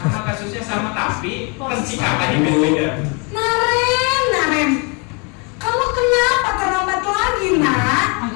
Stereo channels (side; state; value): right; quieter; 33.2 dB